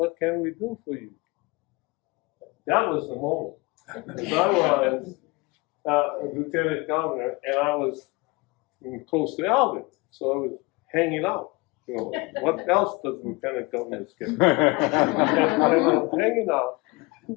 can we do for you? That was the moment. Because I was lieutenant governor, and I was close to Alvin, so I was hanging out. You know, what else does lieutenant governors get? And I was hanging out,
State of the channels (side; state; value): right; quieter; 25.0 dB